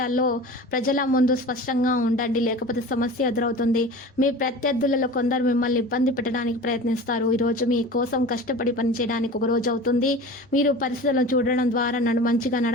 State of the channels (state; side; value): normal; both; correlation 0.36